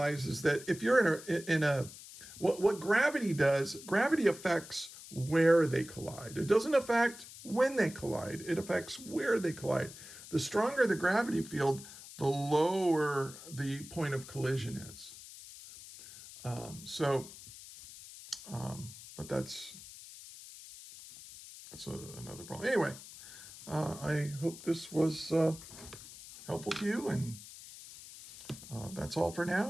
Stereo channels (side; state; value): left; noise; hiss, 15 dB below the sound